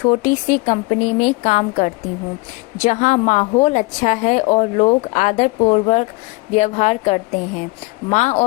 सी कंपनी में काम करती हूँ, जहाँ माहौल अच्छा है और लोग आदरपूर्वक व्यवहार करते हैं। माँ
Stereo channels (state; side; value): quieter; right; 25.1 dB